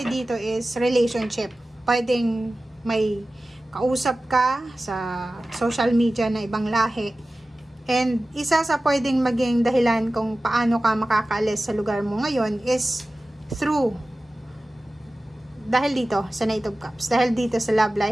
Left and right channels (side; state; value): both; normal; correlation 0.96